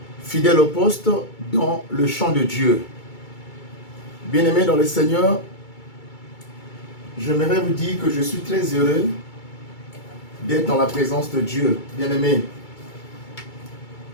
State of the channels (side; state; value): right; late; 2.3 ms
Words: Fidèle au poste dans le champ de Dieu. Bien-aimés dans le Seigneur, j'aimerais vous dire que je suis très heureux d'être dans la présence de Dieu, bien-aimés.